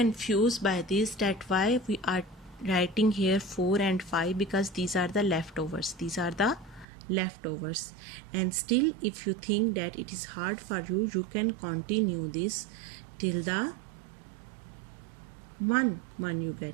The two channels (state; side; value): drops out; left; at 6.9 s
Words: by this, that why we are writing here 4 and 5, because these are the leftovers, and still if you think that it is hard for you, you can continue this till the 1 you